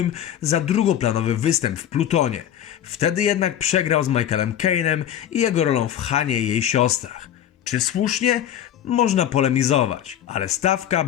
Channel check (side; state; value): right; quieter; 10.6 dB